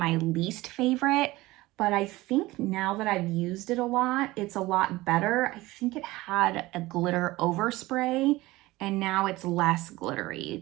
least favorite, but I think now that I've used it a lot, it's a lot better. I think it had a glitter overspray and now it's less glittery.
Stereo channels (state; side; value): quieter; left; 19.2 dB